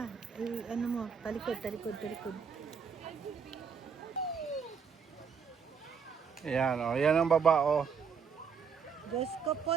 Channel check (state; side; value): quieter; left; 6.2 dB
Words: Ano mo? Talikod. Ayan, oh. Yan ang baba, oh. Diyos ko